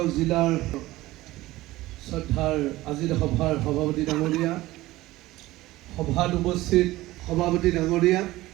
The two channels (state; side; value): quieter; left; 17.7 dB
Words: জিলাৰ শ্ৰদ্ধাৰ আজিৰ সভাৰ সভাপতি ডাঙৰীয়া, সভাত উপস্থিত সভাপতি ডাঙৰীয়া,